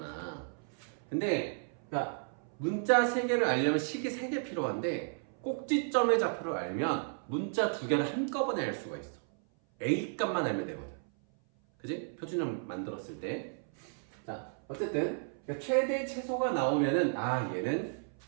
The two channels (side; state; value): left; silent; 55 dB below the other